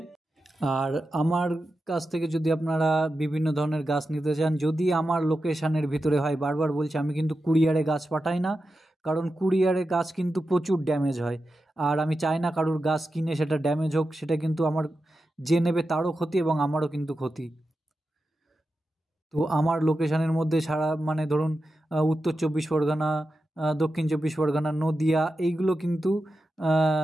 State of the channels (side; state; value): both; normal; correlation 0.91